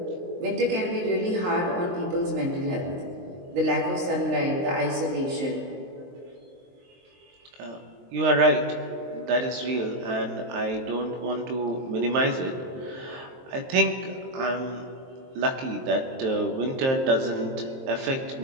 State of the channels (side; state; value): left; late; 23 ms